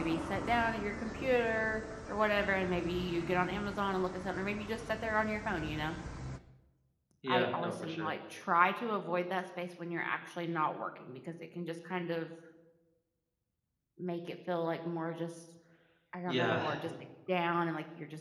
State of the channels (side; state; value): both; identical; correlation 1.00